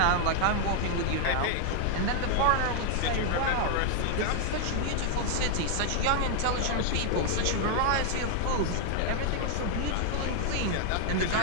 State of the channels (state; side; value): different; both; correlation 0.00